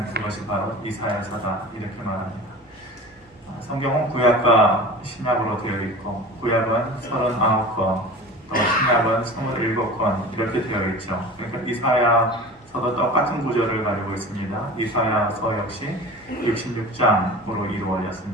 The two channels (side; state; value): both; normal; correlation 0.36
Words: 그것이 바로 이사야서다 이렇게 말합니다. 성경은 구약과 신약으로 되어 있고 구약은 39권, 또 신약은 27권 이렇게 되어 있죠. 그러니까 이사야서도 똑같은 구조를 가지고 있습니다. 이사야서 역시 66장으로